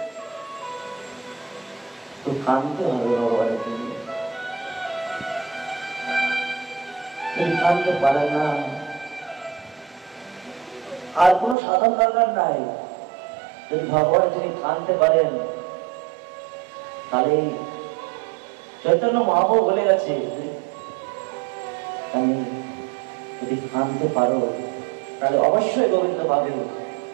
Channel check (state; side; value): drops out; left; at 11.6 s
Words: তো কাঁদতে হবে ভগবানের জন্য। যদি কাঁদতে পারে না, আর কোনো সাধন দরকার নাই। যদি ভগবান যিনি কাঁদতে পারেন, তাহলে চৈতন্য মহাপ্রভু বলে গেছে, আমি যদি কাঁদতে পারো তাহলে অবশ্যই গোবিন্দ পাবে।